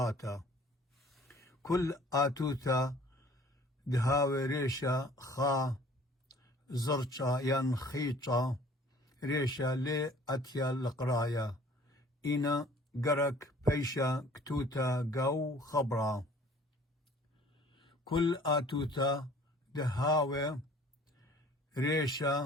كل آتوتا دهاوي ريشا خا زرشا ينخيشا ريشا لي أتيا القرايا إنا قرك بيشا كتوتا قو خبرا كل آتوتا دهاوي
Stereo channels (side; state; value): both; normal; correlation 0.52